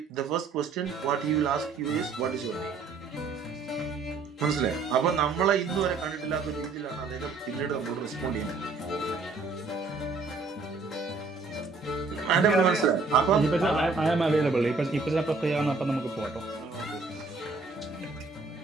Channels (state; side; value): quieter; left; 4.2 dB